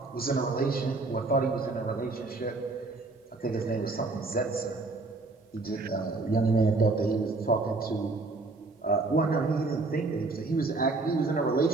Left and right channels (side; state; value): left; quieter; 3.4 dB